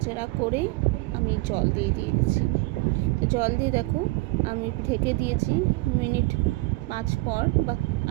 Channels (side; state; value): left; quieter; 22.3 dB